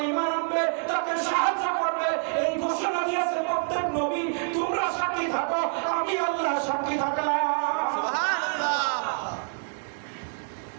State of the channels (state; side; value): silent; left; 60 dB below the other